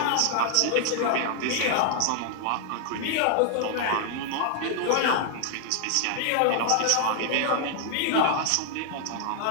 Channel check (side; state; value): both; different; correlation 0.00